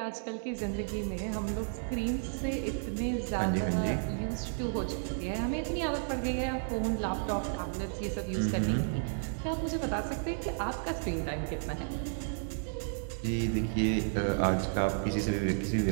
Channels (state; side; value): silent; left; digital silence